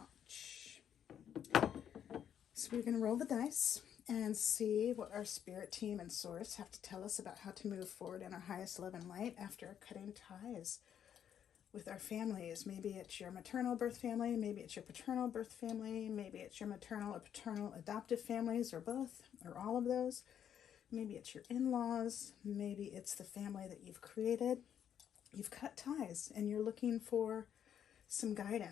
So we're going to roll the dice and see what our spirit team and source have to tell us about how to move forward in our highest love and light after cutting ties with our families. Maybe it's your maternal birth family, maybe it's your paternal birth family, maybe it's your maternal or paternal adoptive families, or both, or all of those. Maybe it's your in-laws, maybe it's the family that you've created. You've cut ties and you're looking for some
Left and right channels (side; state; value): right; quieter; 9.2 dB